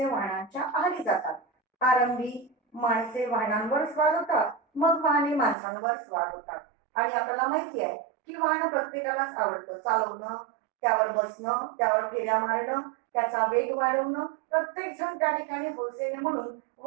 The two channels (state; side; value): drops out; left; at 5.6 s